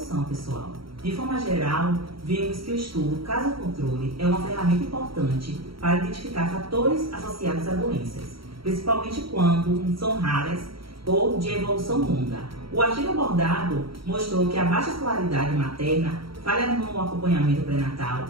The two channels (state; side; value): late; left; 0.75 ms